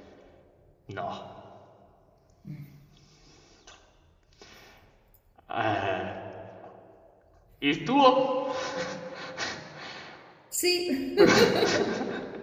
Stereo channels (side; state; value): both; identical; correlation 1.00